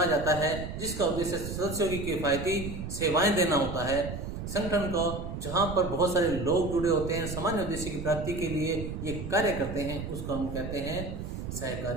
जाता है, जिसका उद्देश्य सदस्यों की किफायती सेवाएं देना होता है। संगठन को जहां पर बहुत सारे लोग जुड़े होते हैं, सामान्य उद्देश्य की प्राप्ति के लिए ये कार्य करते हैं, उसको हम कहते हैं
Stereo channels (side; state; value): right; noise; rumble, 7 dB below the sound